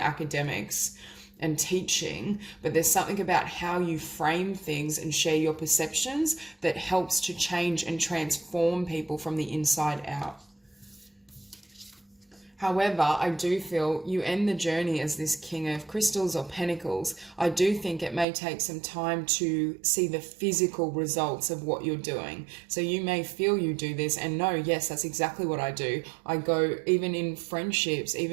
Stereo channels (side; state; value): left; drops out; at 18.2 s